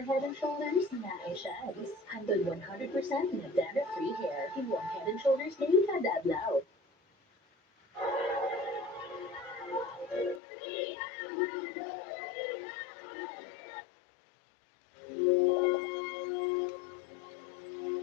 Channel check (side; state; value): right; drops out; at 10.4 s